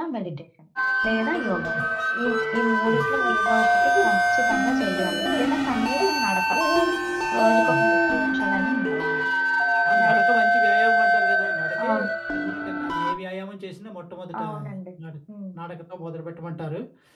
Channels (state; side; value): identical; both; correlation 1.00